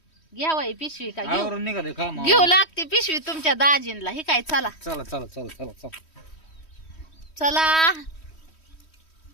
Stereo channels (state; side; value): late; right; 3.1 ms